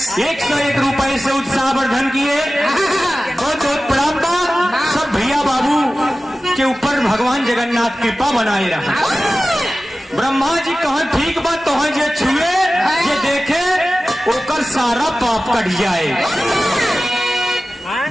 101 रुपए से उत्साहवर्धन किए। बहुत बहुत प्रणाम। सब भैया बाबू के ऊपर भगवान जगन्नाथ कृपा बनाए रहा। ब्रह्मा जी कहा ठीक बात तो जे छुए जे देखे ओकर सारा पाप कट जाए।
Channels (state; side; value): normal; both; correlation 0.96